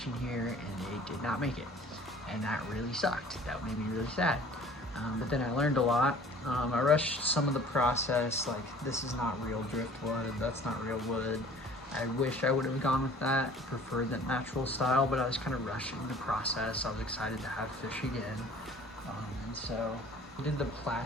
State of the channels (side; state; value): both; normal; correlation 0.50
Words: in here and they did not make it. And that really sucked. That made me really sad. But then I learned a lot. I rushed some of the process, like this is not real driftwood, that's not real wood. I wish I would have gone with that, preferred that natural style, but I was kind of rushing the process. I was excited to have fish again. And so I did the